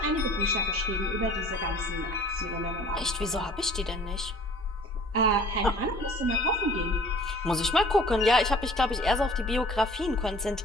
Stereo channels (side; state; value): both; normal; correlation 0.50